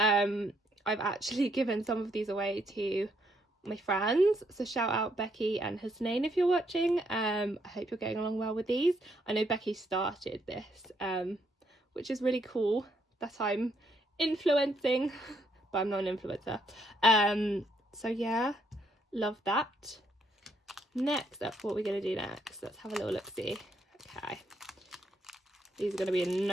actually given some of these away to my friends. So shout out Becky and Hasnain if you're watching. I hope you're getting along well with these. I know Becky started this, which is really cool that I'm influencing, but I'm not an influencer. So yeah, love that. Next up, what we're going to do next, let's have a little look-see. Okay, these are going to be in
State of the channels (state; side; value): normal; both; correlation 0.73